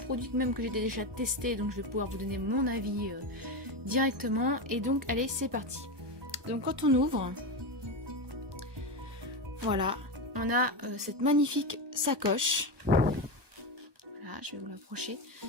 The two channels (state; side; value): late; left; 1.2 ms